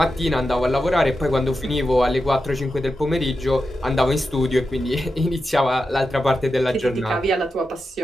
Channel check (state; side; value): normal; both; correlation 0.90